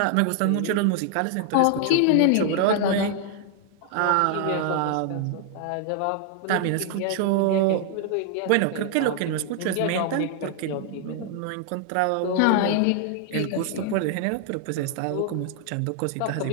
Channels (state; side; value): different; both; correlation 0.00